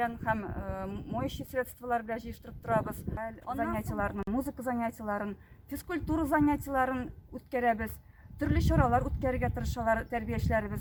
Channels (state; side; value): identical; both; correlation 1.00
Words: һәм моющие средстволар белән җыештырып торабыз. Занятияларны, музыка занятияларын, физкультура занятияларын үткәрәбез. Төрле чаралар үткәрергә тырышалар тәрбиячеләребез.